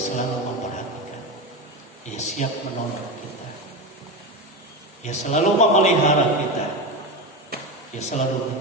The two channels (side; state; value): both; normal; correlation 0.19